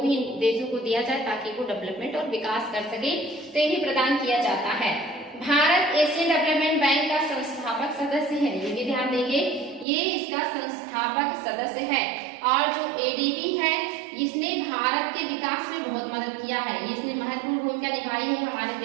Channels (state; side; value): drops out; left; at 9.9 s